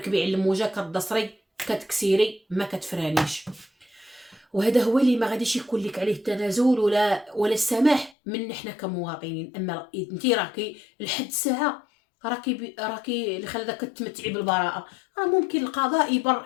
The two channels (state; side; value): drops out; right; at 8.2 s